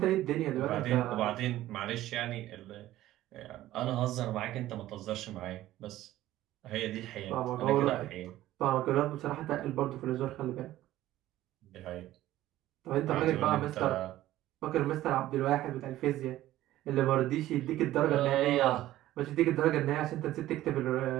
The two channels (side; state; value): left; quieter; 14.8 dB